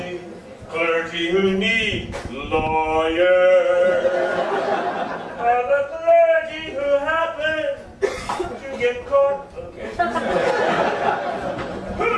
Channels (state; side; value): identical; both; correlation 1.00